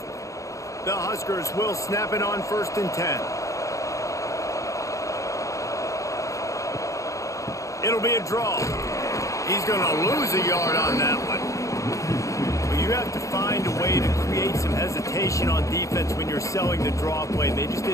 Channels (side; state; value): right; late; 0.15 ms